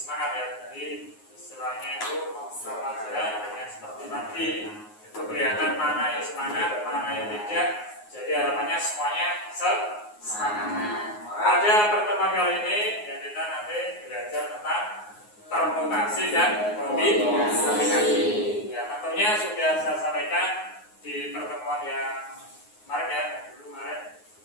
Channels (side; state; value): right; late; 9.5 ms